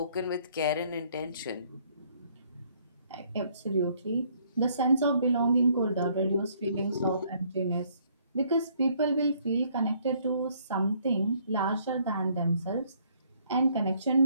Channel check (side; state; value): both; inverted; correlation -0.65